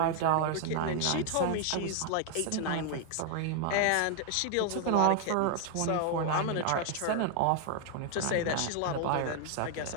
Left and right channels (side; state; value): both; different; correlation 0.00